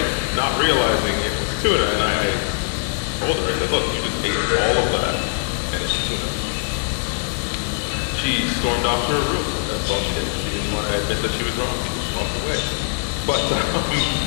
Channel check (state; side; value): silent; right; digital silence